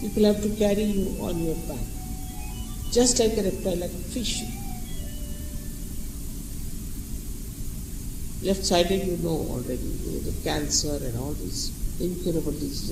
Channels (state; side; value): identical; both; correlation 1.00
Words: have to carry you on your back. Just like a reptile, like a fish. Left-sided, you know already, the cancer and all these incurable